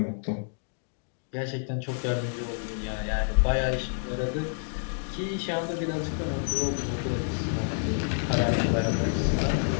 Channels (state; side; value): silent; right; digital silence